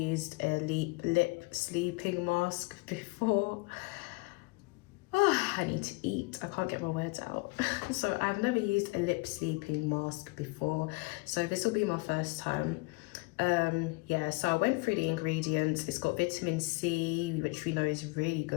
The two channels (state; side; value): quieter; right; 26.5 dB